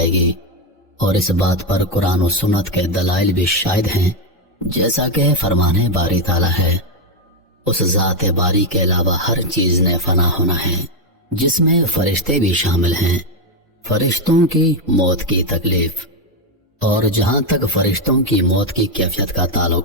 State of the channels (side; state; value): both; normal; correlation 0.06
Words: گی، اور اس بات پر قرآن و سنت کے دلائل بھی شاہد ہیں، جیسا کہ فرمان باری تعالیٰ ہے۔ اس ذات باری کے علاوہ ہر چیز نے فنا ہونا ہے، جس میں فرشتے بھی شامل ہیں۔ فرشتوں کی موت کی تکلیف، اور جہاں تک فرشتوں کی موت کی کیفیت کا